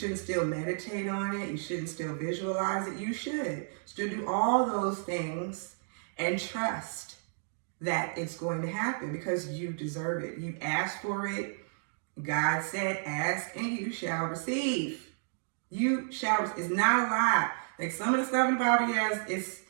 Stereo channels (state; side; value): silent; left; digital silence